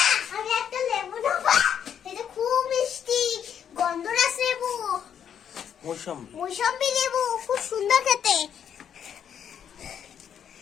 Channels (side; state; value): right; quieter; 8.6 dB